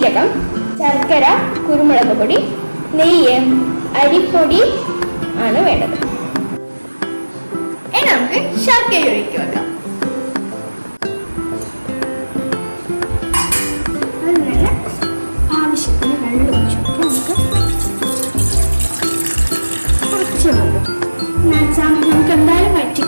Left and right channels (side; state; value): both; inverted; correlation -1.00